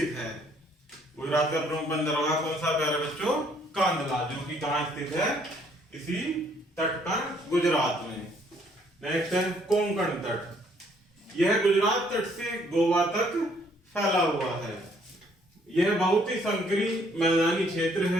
है। गुजरात का प्रमुख बंदरगाह कौन सा प्यारे बच्चों? कांदला, जो कि कहां स्थित है? इसी तट पर गुजरात में। नेक्स्ट है कोंकण तट। यह गुजरात तट से गोवा तक फैला हुआ है। यह बहुत ही संकरी मैदानी क्षेत्र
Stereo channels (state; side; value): normal; both; correlation 0.65